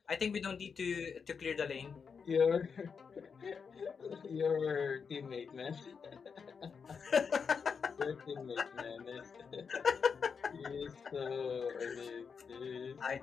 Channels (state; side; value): quieter; right; 6.0 dB